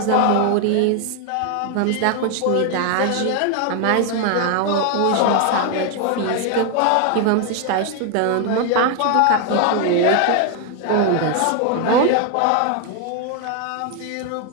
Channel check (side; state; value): both; different; correlation 0.00